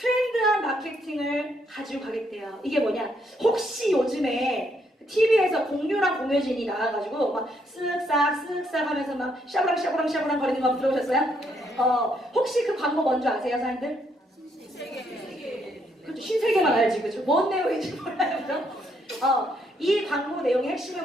마케팅을 가지고 가겠대요. 이게 뭐냐? 혹시 요즘에 TV에서 공유랑 공효진이 나와가지고 막 쓱싹 하면서 막 샤브랑 거리는 거 들어보셨어요? 혹시 그 광고 뭔지 아세요, 사람들? 신세계. 그렇죠. 신세계만 알지, 그죠? 뭔 내용인지 몰라요, 그죠? 이 광고 내용의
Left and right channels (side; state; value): both; normal; correlation 0.73